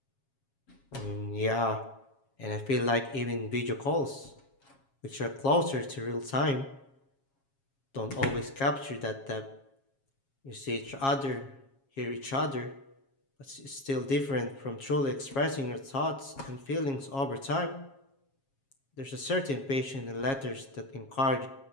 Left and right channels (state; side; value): late; right; 7.4 ms